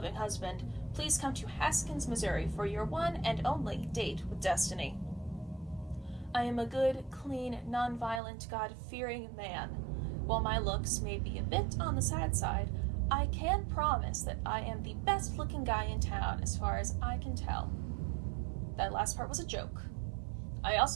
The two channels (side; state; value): left; drops out; at 8.2 s